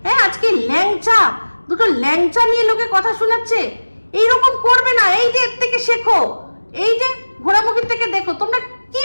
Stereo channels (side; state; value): both; inverted; correlation -1.00